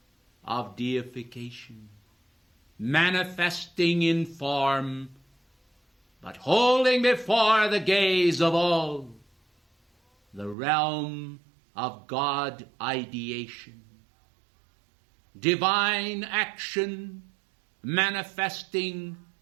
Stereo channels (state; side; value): drops out; left; at 10.6 s